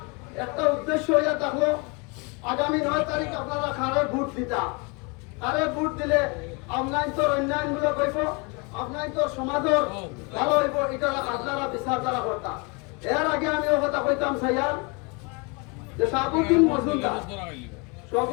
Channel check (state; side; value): quieter; right; 30.8 dB